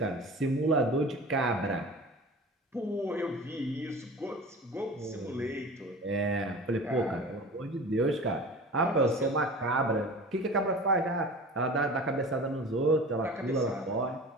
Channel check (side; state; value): both; normal; correlation 0.37